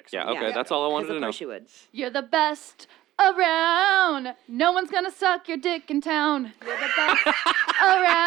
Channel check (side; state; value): left; quieter; 14.9 dB